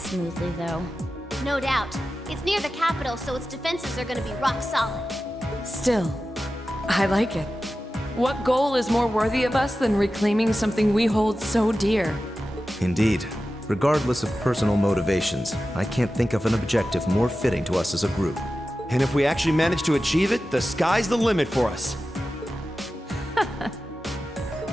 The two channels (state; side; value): normal; both; correlation 0.93